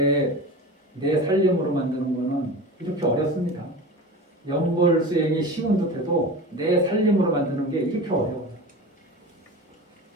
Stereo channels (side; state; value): both; normal; correlation 0.32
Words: 살림으로 만드는 거는 이렇게 어렵습니다. 연불 수행이 쉬운 듯해도 내 살림으로 만드는 게 이렇게 어려워요.